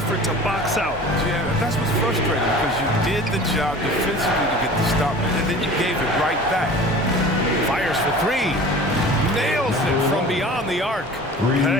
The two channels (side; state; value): both; normal; correlation 0.41